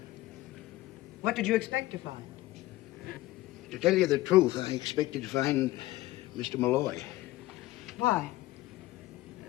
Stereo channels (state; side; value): quieter; right; 17.6 dB